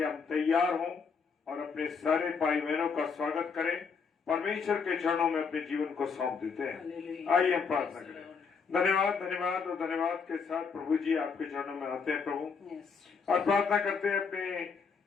हम तैयार हों और अपने सारे भाई बहनों का स्वागत करें, परमेश्वर के चरणों में अपने जीवन को सौंप देते हैं। आइए हम प्रार्थना करें। धन्यवाद धन्यवाद और धन्यवाद के साथ प्रभु जी आपके चरणों में आते हैं प्रभु, और प्रार्थना करते हैं अपने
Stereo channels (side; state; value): right; quieter; 5.6 dB